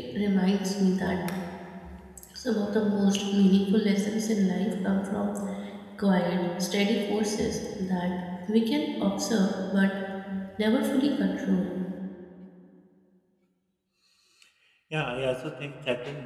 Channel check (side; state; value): both; identical; correlation 1.00